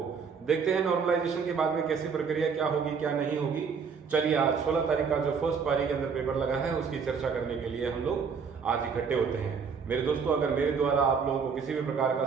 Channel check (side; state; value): left; quieter; 5.9 dB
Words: देखते हैं नॉर्मलाइजेशन के बाद में कैसी प्रक्रिया क्या होगी क्या नहीं होगी। चलिए, आज 16 तारीख का जो फर्स्ट पारी के अंदर पेपर लगा है उसकी चर्चा करने के लिए हम लोग आज इकट्ठे होते हैं। मेरे दोस्तों, अगर मेरे द्वारा आप लोगों को किसी भी प्रकार का